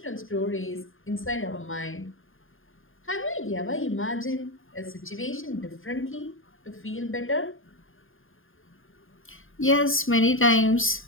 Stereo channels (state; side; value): late; right; 0.59 ms